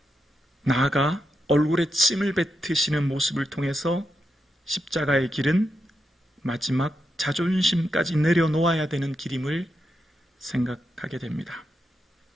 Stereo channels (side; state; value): both; normal; correlation 0.85